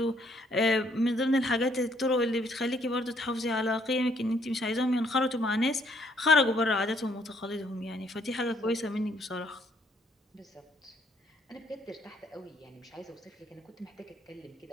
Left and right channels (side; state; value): both; normal; correlation 0.67